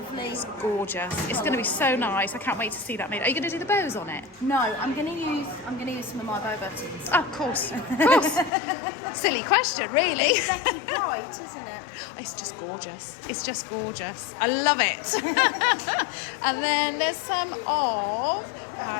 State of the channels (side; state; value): right; drops out; at 8.5 s